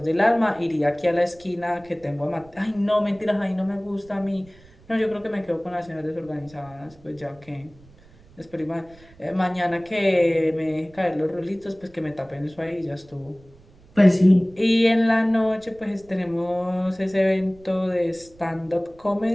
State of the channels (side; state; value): right; noise; rumble, 26 dB below the sound